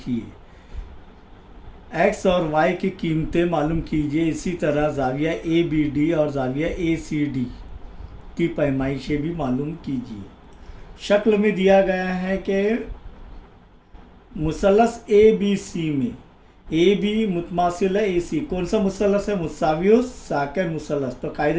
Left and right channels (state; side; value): identical; both; correlation 1.00